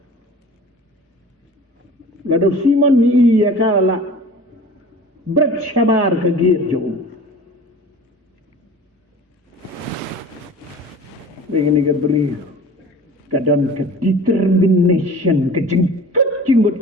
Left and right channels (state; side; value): normal; both; correlation 0.41